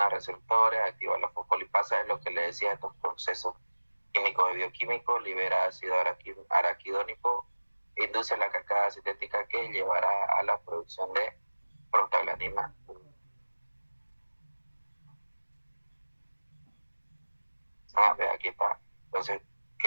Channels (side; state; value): both; inverted; correlation -1.00